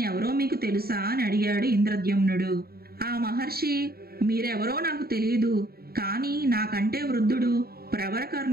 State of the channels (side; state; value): left; late; 0.45 ms